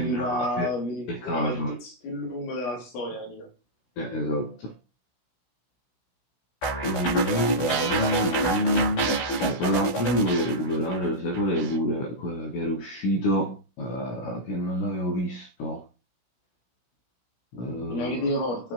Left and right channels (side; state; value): right; late; 16 ms